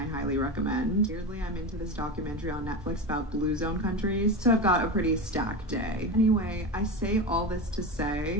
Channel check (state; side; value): normal; both; correlation 0.21